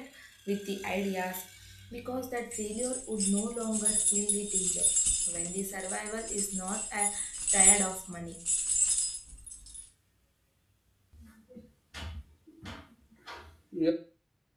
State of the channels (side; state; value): both; identical; correlation 1.00